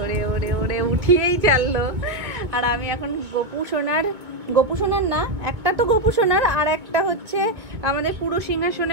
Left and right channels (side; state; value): left; late; 2.1 ms